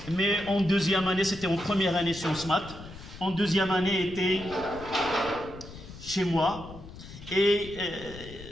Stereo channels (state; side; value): noise; left; rumble, 15 dB below the sound